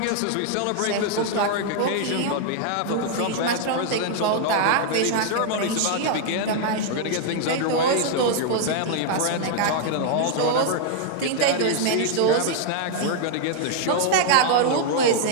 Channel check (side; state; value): both; different; correlation 0.00